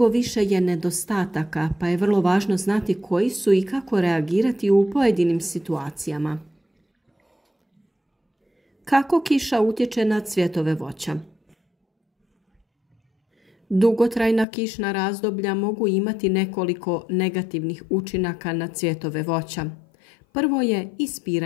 više je nedostataka, pa je vrlo važno znati koji su i kako reagirati u pojedinim situacijama. Kako kiša utječe na cvjetove voća? Dugotrajna kišna razdoblja mogu imati nekoliko negativnih učinaka na cvjetove voća. Prvo je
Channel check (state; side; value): drops out; right; at 14.5 s